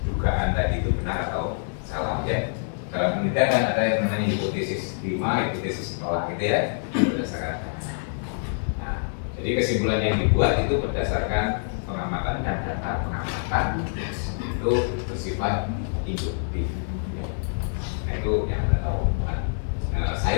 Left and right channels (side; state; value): right; silent; digital silence